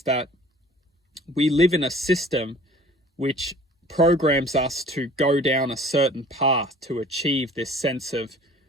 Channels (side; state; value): both; normal; correlation 0.49